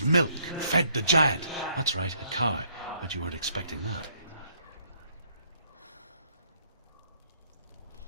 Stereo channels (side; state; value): both; inverted; correlation -0.67